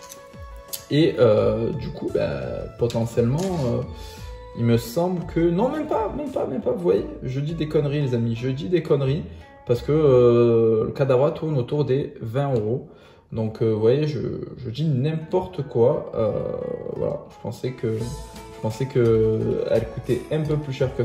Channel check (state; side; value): identical; both; correlation 1.00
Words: Et du coup, potentiellement, il me semble que... Non, même pas. Vous voyez, je dis des conneries, les amis. Je dis des conneries parce que le Kadabra tourne autour des 20 €. Donc, vous voyez, je dis n'importe quoi. Voilà, je pensais que elle coûtait un peu plus cher que